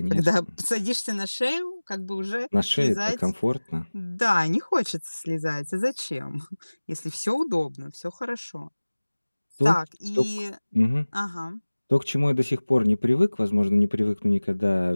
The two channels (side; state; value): both; inverted; correlation -1.00